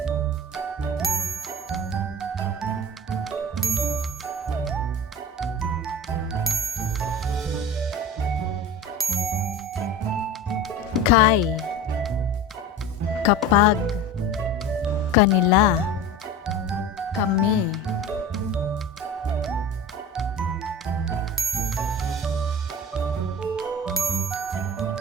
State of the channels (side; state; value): both; normal; correlation 0.34